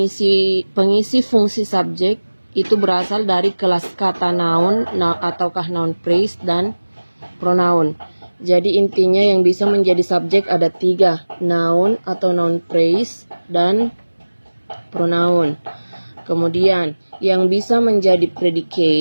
fungsi subjek itu berasal dari kelas kata noun ataukah noun phrase dan pronoun. Jadi intinya yang bisa menjadi subjek ada 3, noun atau noun phrase dan pronoun. Kemudian yang bisa menjadi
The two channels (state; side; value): inverted; both; correlation -1.00